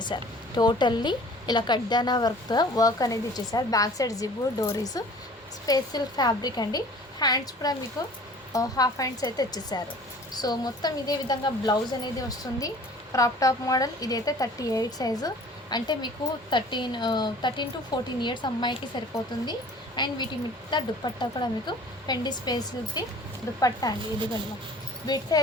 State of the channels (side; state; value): both; normal; correlation 0.48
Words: టోటల్లీ ఇలా కడ్దానా వర్క్ అనేది ఇచ్చేసారు. బ్యాక్ సైడ్ జిబ్బు డోరీస్ స్పేస్ సిల్క్ ఫ్యాబ్రిక్ అండి. హ్యాండ్స్ కూడా మీకు హాఫ్ హ్యాండ్స్ అయితే ఇచ్చేసారు. సో మొత్తం ఇదే విధంగా బ్లౌజ్ అనేది వస్తుంది. Crop top model. ఇదైతే 38 సైజు, అంటే మీకు 13 to 14 ఇయర్స్ అమ్మాయికి సరిపోతుంది. అండ్ వీటి మీద దుప్పట్టా కూడా మీకు ఫెండీ స్పేస్కి దుప్పట్టా అండి. ఇదిగోండి విడ్త్